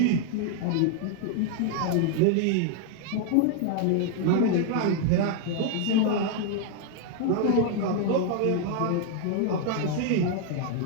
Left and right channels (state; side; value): different; both; correlation 0.00